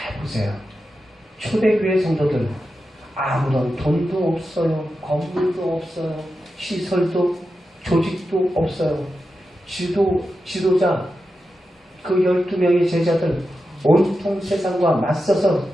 보세요. 초대교회 성도들 아무런 돈도 없어요. 건물도 없어요. 시설도 조직도 없어요. 지도자 그 12명의 제자들 온통 세상과 맞서서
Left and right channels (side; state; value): both; normal; correlation 0.90